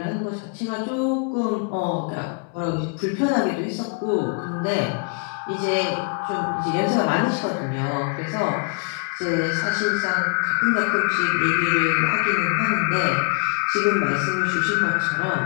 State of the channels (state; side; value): quieter; right; 34.7 dB